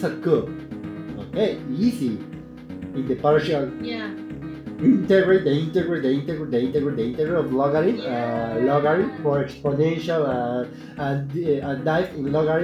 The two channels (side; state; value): both; identical; correlation 1.00